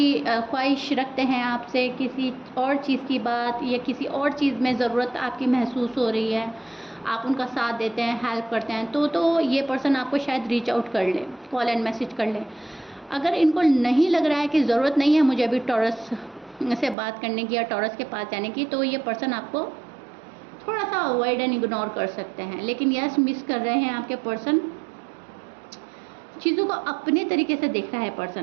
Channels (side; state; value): left; drops out; at 16.9 s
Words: ख्वाहिश रखते हैं आपसे, किसी और चीज़ की बात या किसी और चीज़ में ज़रूरत आपकी महसूस हो रही है, आप उनका साथ देते हैं, हेल्प करते हैं, तो ये पर्सन आपको शायद रीच आउट कर ले, कॉल एंड मैसेज कर ले। अगर इनको नहीं लग रहा है कि ज़रूरत नहीं है मुझे अभी टॉरस से बात करने की या टॉरस के पास जाने की, तो ये पर्सन आपको थोड़ा सा अवॉइड एंड इग्नोर कर सकते हैं। लेकिन यस, मिस कर रहे हैं आपके पर्सन, चीज़ों को अपने तरीके से देख रहा है